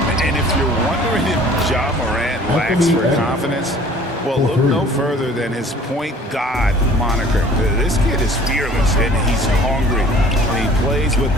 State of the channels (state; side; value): normal; both; correlation 0.51